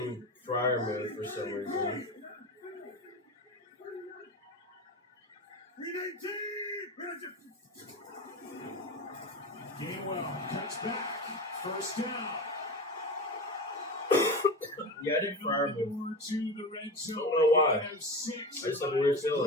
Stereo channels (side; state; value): both; normal; correlation 0.26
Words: Fryer mode for some reason. Gainwell cuts back. First down. Yeah, I did Fryer move. To the red zone. I don't know why. I just have a weird